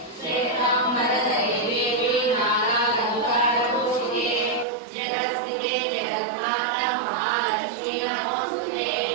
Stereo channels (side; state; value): left; drops out; at 4.7 s